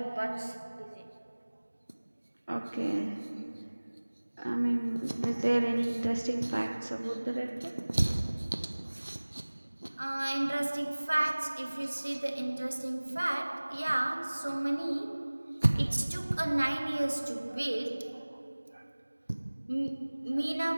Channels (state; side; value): inverted; both; correlation -1.00